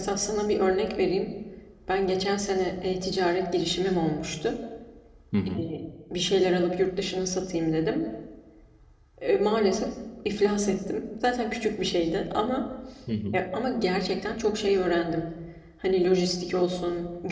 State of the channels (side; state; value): both; identical; correlation 1.00